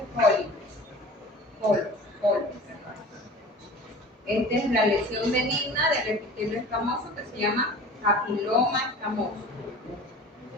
polos. Esta es la lesión benigna del epitelio escamoso que se llama papiloma escamoso,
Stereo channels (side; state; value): both; normal; correlation 0.40